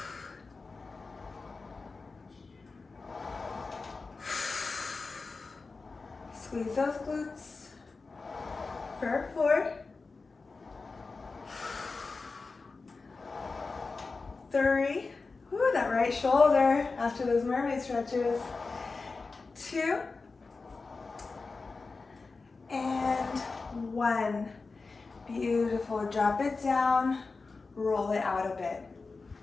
Squeeze those glutes. For 4. 3. Ooh, that right shoulder after those mermaid stretches. 2. And 1. Beautiful. Drop it down, roll it out a bit.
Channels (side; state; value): right; quieter; 4.1 dB